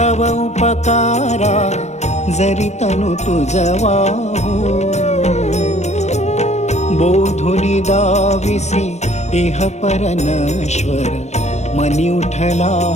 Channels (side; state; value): right; late; 0.32 ms